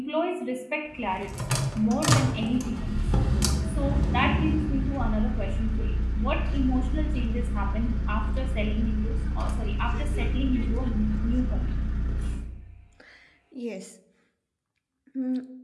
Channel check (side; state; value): both; identical; correlation 1.00